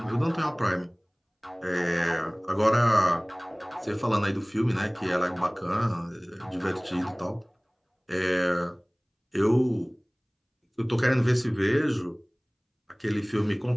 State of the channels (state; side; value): identical; both; correlation 1.00